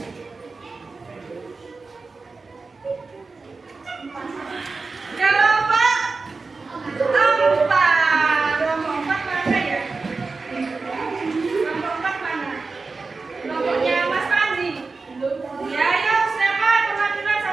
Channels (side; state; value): left; quieter; 4.1 dB